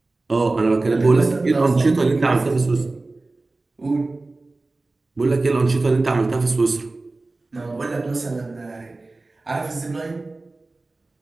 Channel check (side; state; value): left; quieter; 3.2 dB